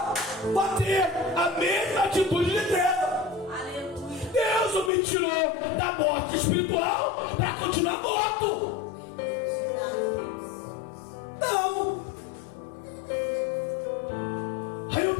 para ter a mesma atitude de treva. Deus não me tirou da morte espiritual para continuar morto. Não. Aí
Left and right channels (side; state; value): right; drops out; at 4.9 s